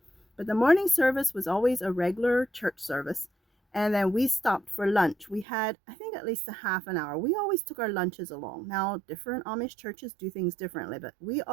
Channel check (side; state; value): left; drops out; at 5.5 s